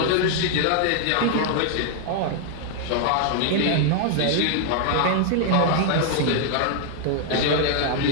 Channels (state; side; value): different; both; correlation 0.00